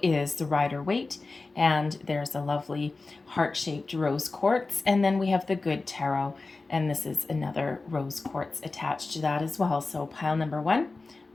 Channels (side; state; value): right; quieter; 3.6 dB